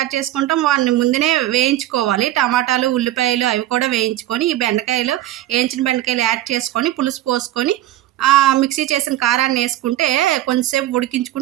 చేసుకుంటాం. వాటిని ముందునే వేయించుకోవాలి. టమాటాలు, ఉల్లిపాయలు అవి కూడా వేయించుకొని, ఈ బెండకాయలు వేయించిన బెండకాయలు యాడ్ చేసుకొని, పులుసు పోసుకొని, మిక్సీ చేసిన కారాన్ని యేసుకుంటే కొంచెంసేపు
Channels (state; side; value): quieter; left; 14.1 dB